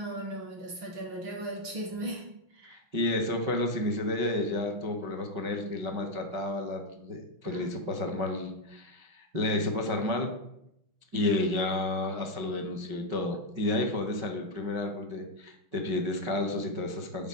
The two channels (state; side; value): late; left; 6.0 ms